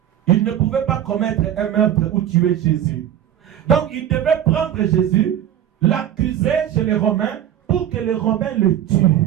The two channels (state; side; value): quieter; left; 10.7 dB